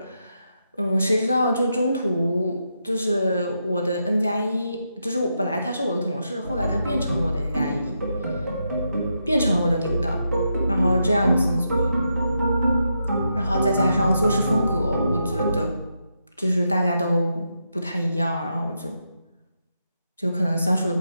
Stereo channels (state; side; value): inverted; both; correlation -0.83